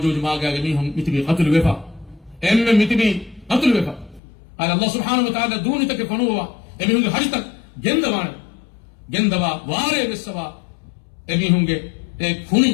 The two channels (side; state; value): right; drops out; at 4.2 s